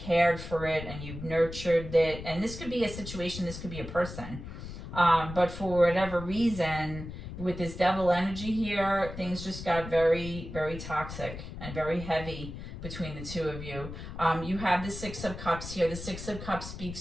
for it, and you've nurtured it. And this could be a situation, this could be a person. But for whatever reason, with this devil energy here, things just got very, very toxic and very heavy between the two of you. You have the Six of Cups here. The Six of Cups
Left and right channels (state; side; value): noise; left; rumble, 10 dB below the sound